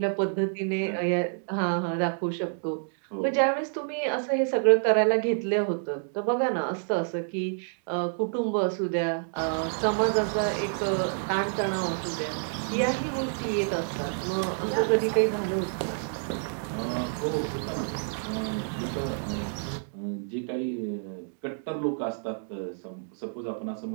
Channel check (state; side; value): silent; left; digital silence